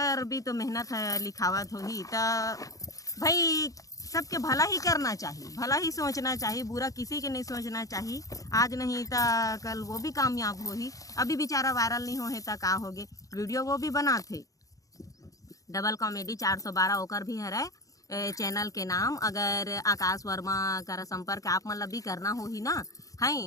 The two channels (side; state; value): right; late; 0.17 ms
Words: भी तो मेहनत है लिखावत हो ही। तो भाई सबके भला ही करना चाहिए, भला ही सोचना चाहिए, बुरा किसी के नहीं सोचना चाहिए। आज नहीं तो कल वो भी कामयाब हो ही। अभी बेचारा वायरल नहीं हो है तो का होगे, वीडियो वो भी बनाते डबल कॉमेडी 412 ओकर भी है चैनल के नाम। अगर आकाश वर्मा का संपर्क आप मतलब भी करना हो ही ना